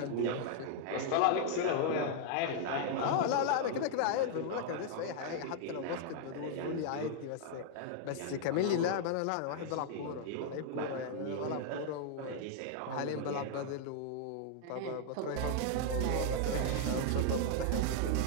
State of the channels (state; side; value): different; both; correlation -0.01